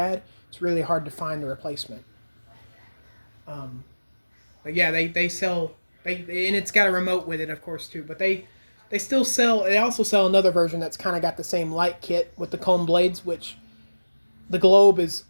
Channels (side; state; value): both; inverted; correlation -1.00